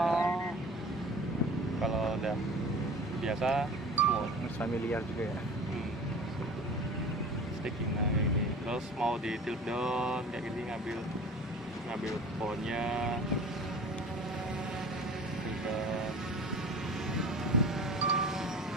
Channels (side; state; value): both; normal; correlation 0.40